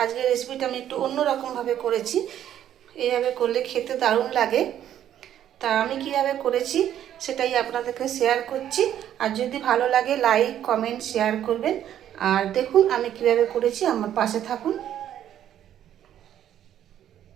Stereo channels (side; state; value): left; quieter; 10.8 dB